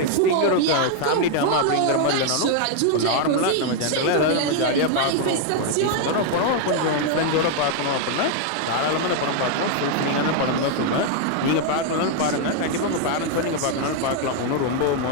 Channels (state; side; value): different; both; correlation 0.00